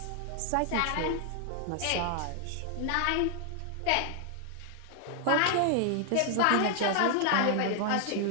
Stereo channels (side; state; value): both; different; correlation 0.00